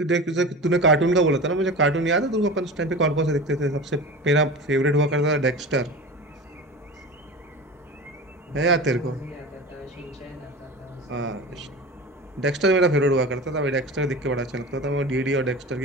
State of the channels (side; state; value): both; normal; correlation 0.31